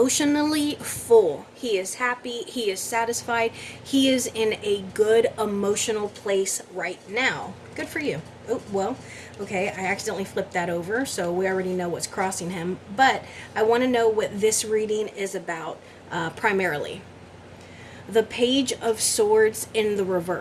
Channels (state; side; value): identical; both; correlation 1.00